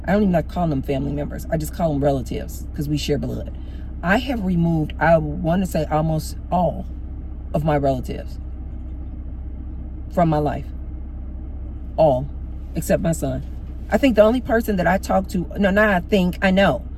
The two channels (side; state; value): both; identical; correlation 1.00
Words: I don't even like calling them family members. I just call them relatives because we share blood. I have removed, I want to say almost all of my relatives from my life. All, except my son. I think the only person that I talk to, no, not I think, I know.